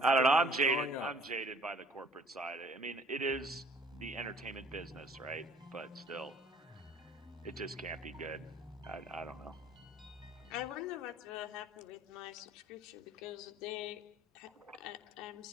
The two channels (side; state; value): both; normal; correlation 0.55